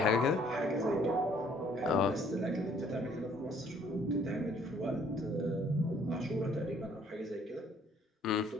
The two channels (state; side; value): normal; both; correlation 0.61